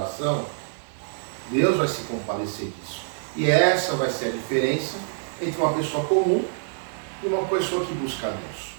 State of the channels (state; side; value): silent; left; 56 dB below the other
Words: Deus vai se compadecer disso. E essa vai ser a diferença entre uma pessoa comum e uma pessoa que busca a Deus.